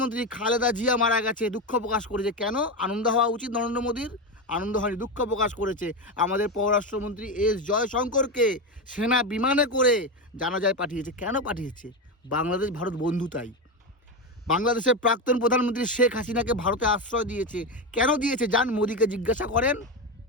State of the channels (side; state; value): both; normal; correlation 0.15